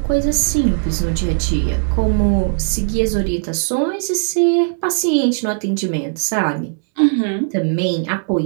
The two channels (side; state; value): left; silent; digital silence